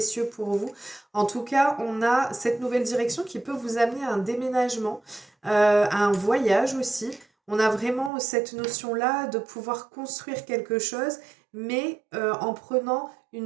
pour vous. En tout cas, on a cette nouvelle direction qui peut vous amener à un déménagement, à un voyage aussi. On a vraiment cette notion-là de pouvoir construire quelque chose, mais en prenant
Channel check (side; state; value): left; drops out; at 8.1 s